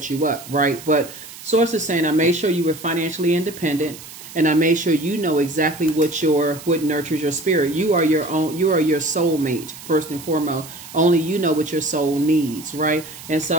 you up, right? But source is saying, I made sure you were financially independent, and I made sure you know exactly what nurtures your spirit. You are your soulmate, first and foremost. Only you know what your soul needs, right? And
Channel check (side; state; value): right; noise; hiss, 16 dB below the sound